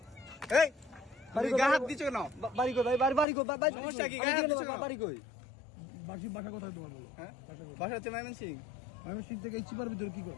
এই বাড়ি গায়ে হাত দিছো কেন? বাড়ি কই ভাই? বাড়ি কই? সমস্যা কি? গায়ে হাত দিছো কেন? বাড়ি কই? বাসা কোথায় তোমার বলো? হ্যাঁ বাসা কোথায়? বাসা হচ্ছে ময়মনসিং। ময়মনসিং থেকে এই চিপার ভিতরে কি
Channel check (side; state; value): right; drops out; at 3.2 s